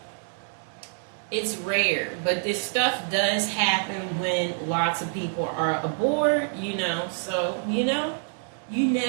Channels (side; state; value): left; silent; digital silence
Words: it's rare, but this stuff does happen when lots of people are aboard, so, you